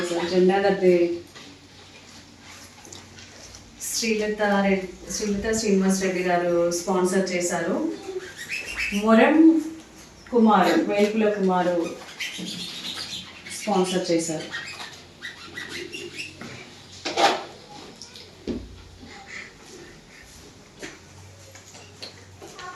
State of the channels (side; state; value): both; identical; correlation 1.00